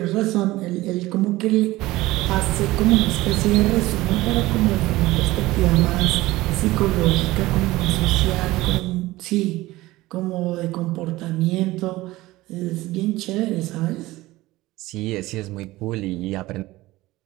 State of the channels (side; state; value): left; quieter; 18.4 dB